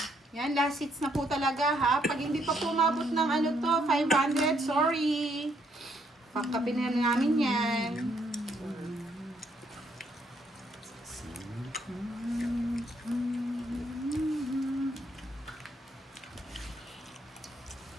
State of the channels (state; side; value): normal; both; correlation 0.72